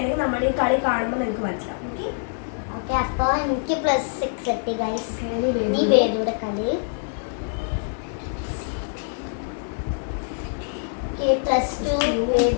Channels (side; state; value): right; silent; 62 dB below the other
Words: നമ്മുടെ ഈ കളി കാണുമ്പോൾ നിങ്ങൾക്ക് മനസ്സിലാവും. ഓക്കെ അപ്പൊ എനിക്ക് +6 കിട്ടി ഗൈസ്. നീ വേദുടെ കളി. +2